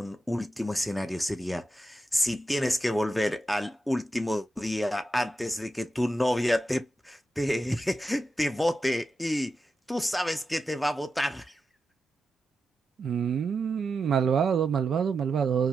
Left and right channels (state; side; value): normal; both; correlation 0.89